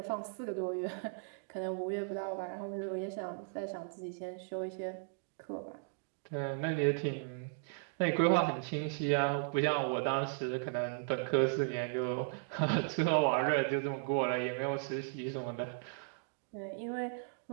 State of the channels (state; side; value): silent; left; digital silence